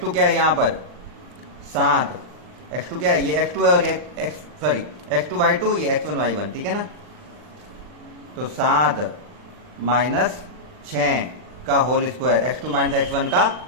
क्या है यहाँ पर 7, x2 क्या है ये x2 है और ये x2 y2 ये x1 y1, ठीक है ना। तो 7 माइनस 6 का whole square, x2 minus x1 का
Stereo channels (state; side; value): late; left; 40 ms